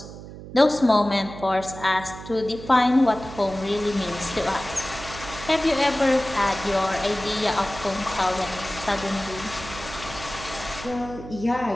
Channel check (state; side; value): noise; right; hum, 13 dB below the sound